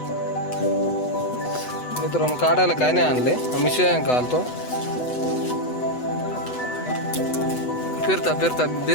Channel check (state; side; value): late; right; 8.0 ms